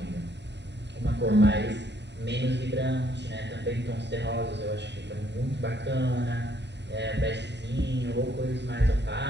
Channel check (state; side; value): late; left; 0.50 ms